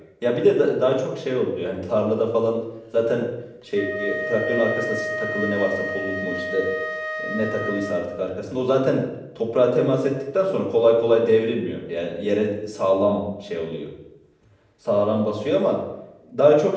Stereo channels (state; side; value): identical; both; correlation 1.00